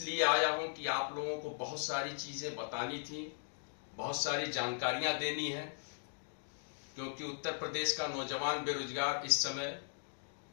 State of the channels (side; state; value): right; silent; digital silence